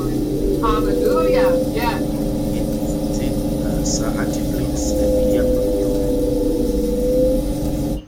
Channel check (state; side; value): identical; both; correlation 1.00